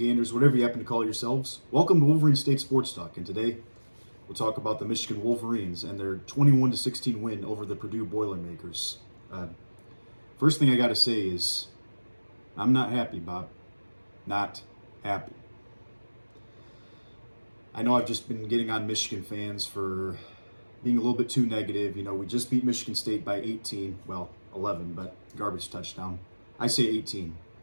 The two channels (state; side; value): inverted; both; correlation -1.00